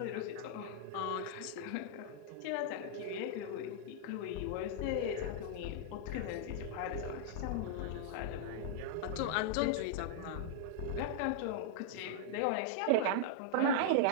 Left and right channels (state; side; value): different; both; correlation -0.01